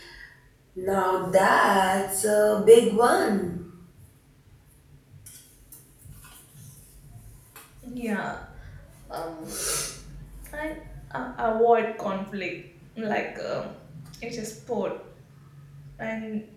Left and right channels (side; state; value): both; identical; correlation 1.00